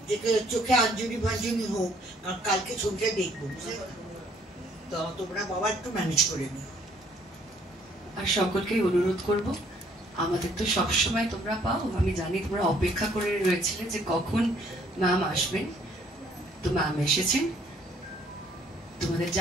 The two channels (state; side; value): normal; both; correlation 0.63